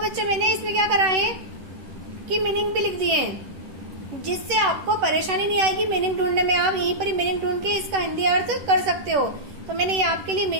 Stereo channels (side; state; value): left; late; 10 ms